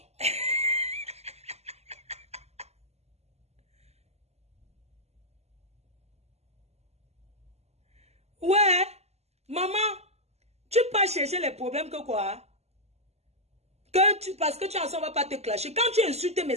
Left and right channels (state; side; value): late; left; 0.31 ms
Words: Ouais, maman, tu peux chercher les problèmes que quoi? Parce que tu en sens, on va pas te clasher. Quand tu insultes mes